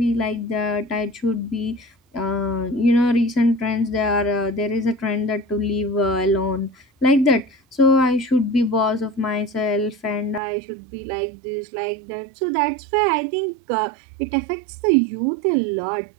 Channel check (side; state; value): left; drops out; at 10.4 s